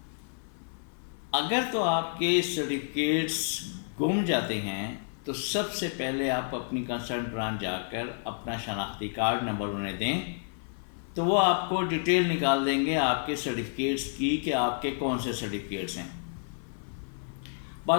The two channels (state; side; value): silent; right; 58 dB below the other